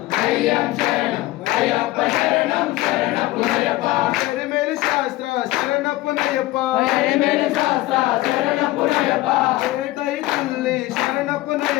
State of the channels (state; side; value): quieter; right; 17.7 dB